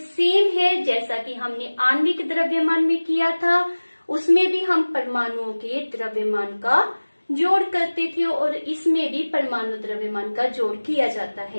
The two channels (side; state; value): both; inverted; correlation -1.00